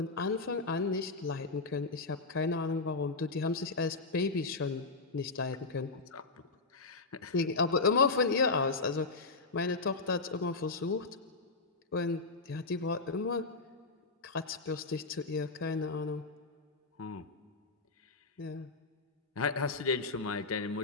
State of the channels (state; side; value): quieter; right; 3.8 dB